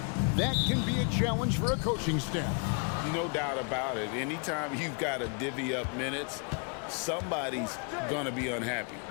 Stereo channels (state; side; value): quieter; right; 37.4 dB